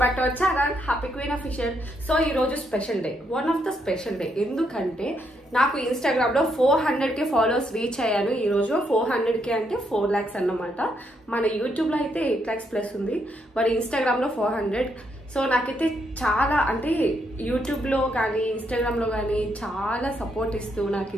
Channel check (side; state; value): both; normal; correlation 0.76